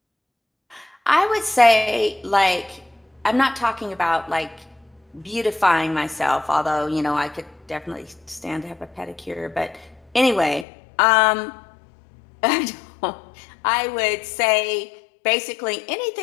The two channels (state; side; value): drops out; right; at 10.7 s